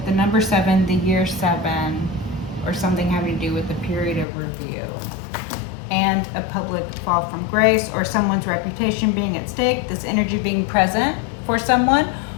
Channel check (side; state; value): right; drops out; at 4.2 s